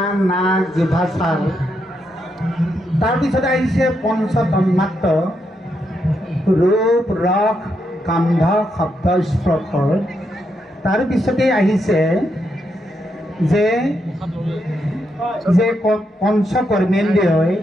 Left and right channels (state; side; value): normal; both; correlation 0.81